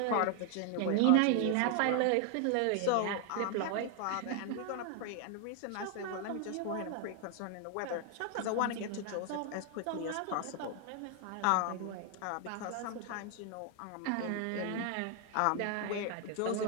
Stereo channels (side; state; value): both; different; correlation 0.00